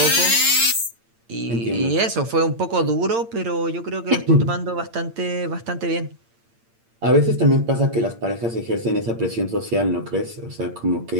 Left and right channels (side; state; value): left; late; 8.7 ms